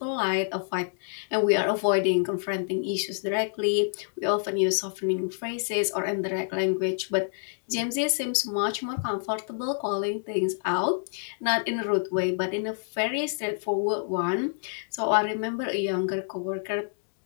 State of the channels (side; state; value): right; silent; digital silence